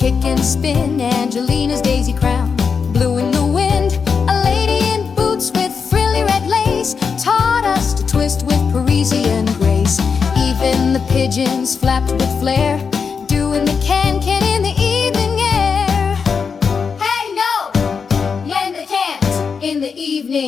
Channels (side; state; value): right; quieter; 5.8 dB